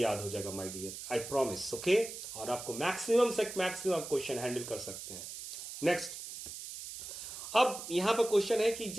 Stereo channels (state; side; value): noise; right; hiss, 10 dB below the sound